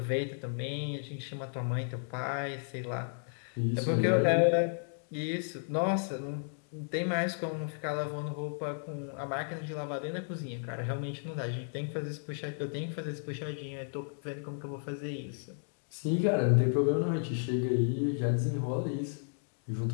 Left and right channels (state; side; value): silent; right; digital silence